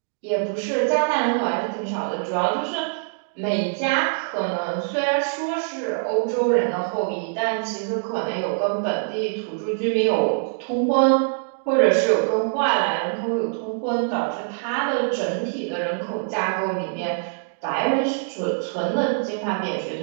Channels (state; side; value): silent; left; 63 dB below the other